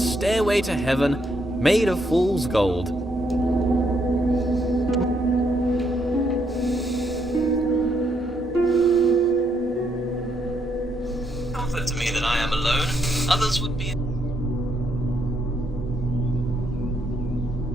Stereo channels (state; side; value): normal; both; correlation 0.75